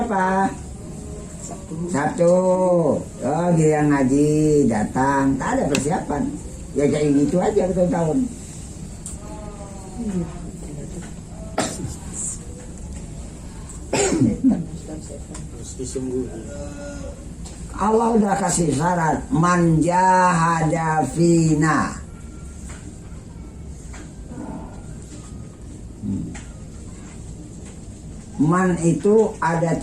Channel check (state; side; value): identical; both; correlation 1.00